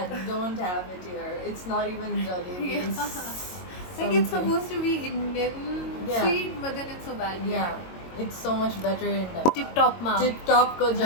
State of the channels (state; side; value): late; right; 22 ms